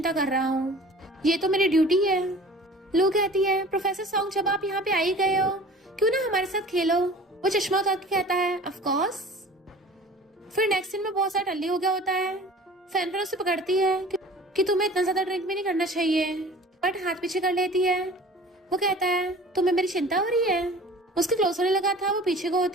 कर रहा हूँ, ये तो मेरी ड्यूटी है। लू कहती है प्रोफेसर सॉन्ग जब आप यहाँ पे आ ही गए हो क्यों ना हमारे साथ खेलो। वो चश्मा उतार के कहता है ऑफ कोर्स। फिर नेक्स्ट दिन में बहुत सारा टल्ली हो गया होता है। फैन उसे पकड़ती है कि तुम्हें इतना ज्यादा ड्रिंक भी नहीं करना चाहिए, बट हाथ पीछे कर लेती है। वो कहता है तुम्हें मेरी चिंता हो रही है? उसके क्लोज होने लगा था, वो पीछे को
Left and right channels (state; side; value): normal; both; correlation 0.44